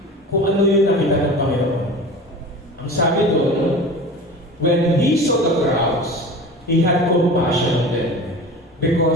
Kung ano yung nakita ng Panginoon. Ang sabi doon, when He saw the crowds, He had compassion on them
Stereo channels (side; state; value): both; normal; correlation 0.36